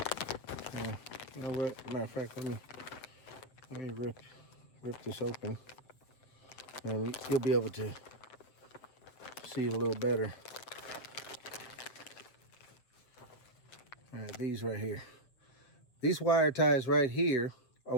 You know what? Matter of fact, let me rip this open, and you'll be able to see it a little better. All right, these right here. These wire ties right here are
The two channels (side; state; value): right; late; 7.5 ms